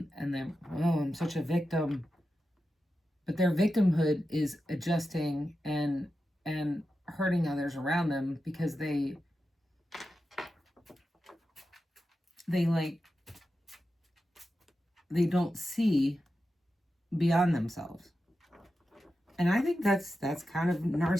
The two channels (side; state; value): both; normal; correlation 0.91